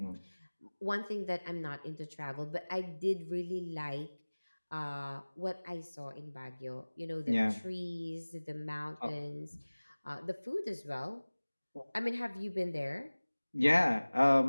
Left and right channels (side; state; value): both; inverted; correlation -1.00